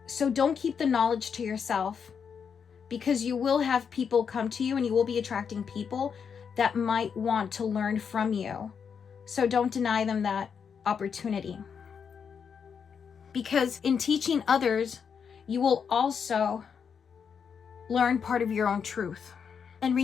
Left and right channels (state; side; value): quieter; right; 6.8 dB